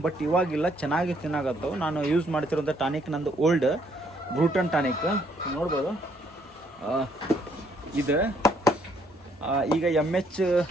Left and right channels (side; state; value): both; normal; correlation 0.68